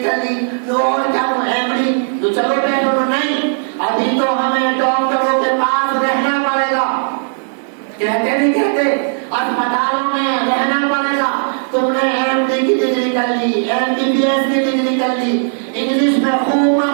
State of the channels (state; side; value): silent; left; digital silence